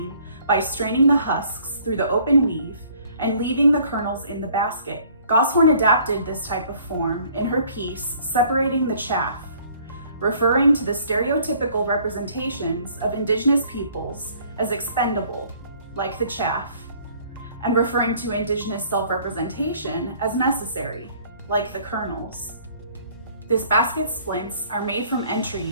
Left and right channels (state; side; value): inverted; both; correlation -0.57